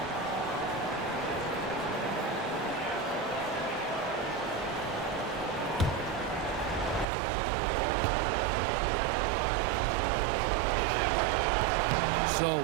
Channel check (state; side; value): drops out; left; at 7.1 s